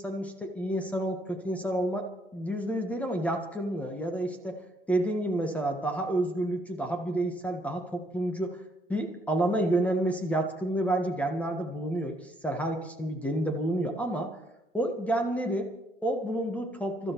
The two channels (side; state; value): both; normal; correlation 0.70